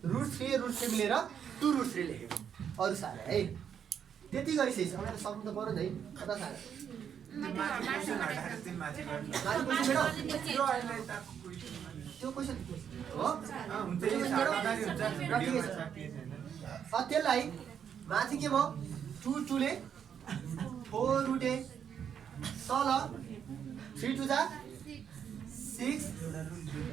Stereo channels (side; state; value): left; quieter; 8.2 dB